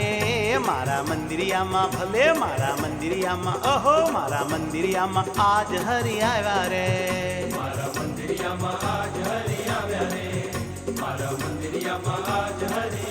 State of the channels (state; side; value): identical; both; correlation 1.00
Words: મારા મંદિરિયામાં ભલે મારા મંદિરિયામાં ઓહો મારા મંદિરિયામાં આજ હરિ આવ્યા રે મારા મંદિરિયામાં આજ હરિ આવ્યા રે મારા મંદિરિયામાં આજ હરિ